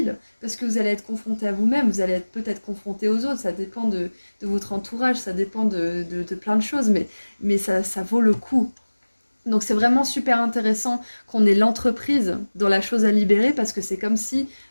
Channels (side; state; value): both; inverted; correlation -1.00